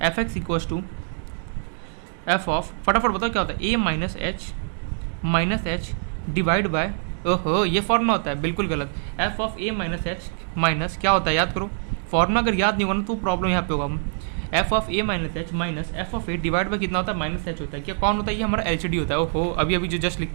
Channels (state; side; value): silent; left; digital silence